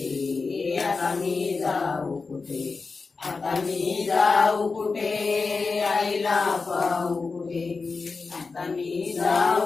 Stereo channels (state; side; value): quieter; right; 4.4 dB